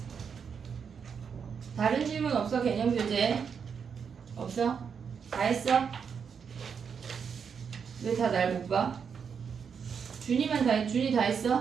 다른 질문 없어? 개념 교재 없어? 다 했어? 왜 다 날 못 봐? 준이 다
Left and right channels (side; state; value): left; quieter; 6.6 dB